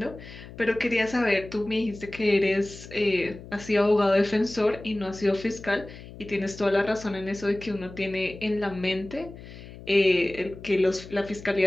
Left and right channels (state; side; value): noise; left; hum, 16 dB below the sound